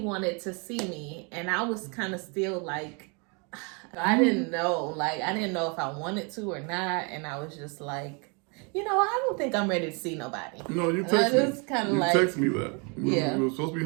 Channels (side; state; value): left; quieter; 33.7 dB